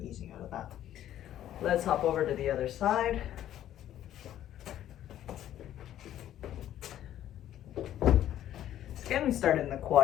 easing out of that. Let's hop over to the other side. Again, we start in the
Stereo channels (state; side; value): quieter; right; 11.9 dB